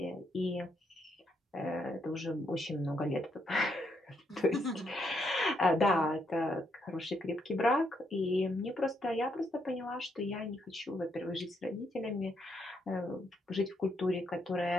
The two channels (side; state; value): both; normal; correlation 0.76